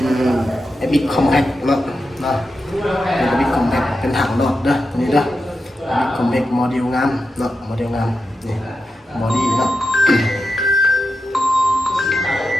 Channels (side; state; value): both; normal; correlation 0.89